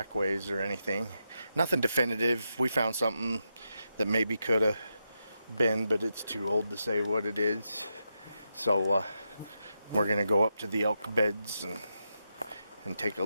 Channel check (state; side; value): inverted; both; correlation -0.85